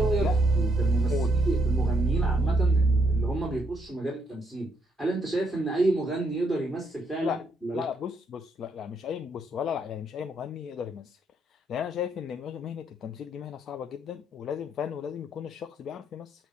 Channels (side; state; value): both; normal; correlation 0.74